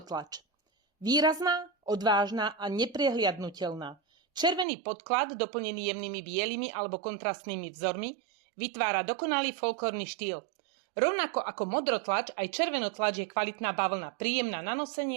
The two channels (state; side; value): drops out; left; at 4.7 s